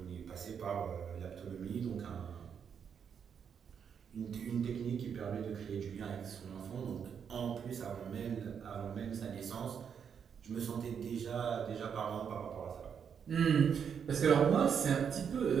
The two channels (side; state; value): left; quieter; 7.3 dB